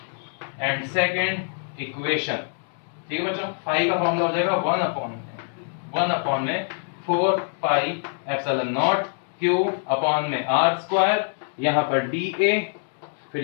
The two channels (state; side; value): silent; right; 62 dB below the other